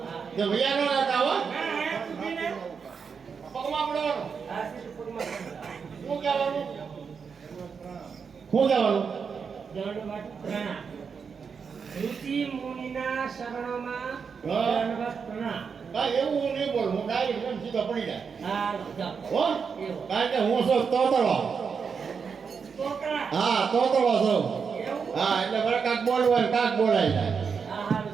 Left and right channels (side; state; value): left; quieter; 6.0 dB